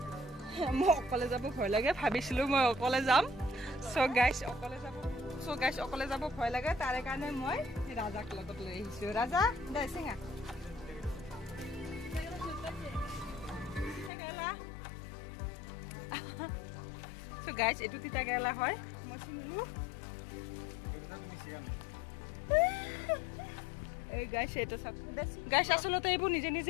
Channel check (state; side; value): drops out; right; at 14.1 s